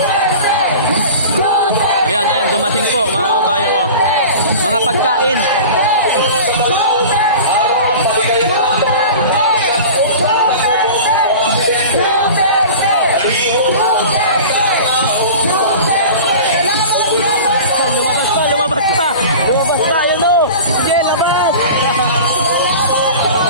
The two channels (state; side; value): inverted; both; correlation -0.37